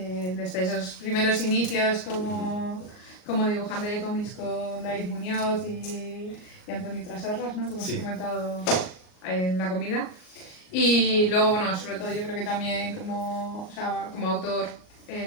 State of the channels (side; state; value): right; late; 38 ms